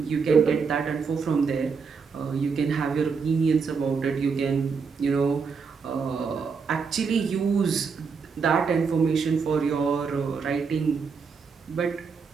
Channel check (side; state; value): left; quieter; 5.5 dB